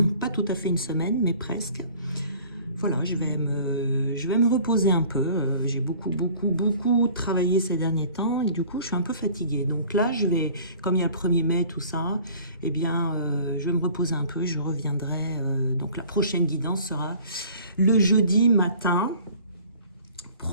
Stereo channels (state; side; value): inverted; both; correlation -0.49